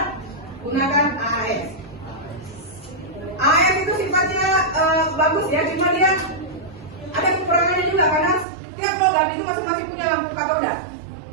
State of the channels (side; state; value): left; drops out; at 8.5 s